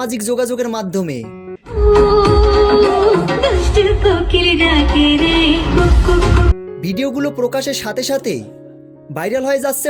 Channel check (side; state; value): both; identical; correlation 1.00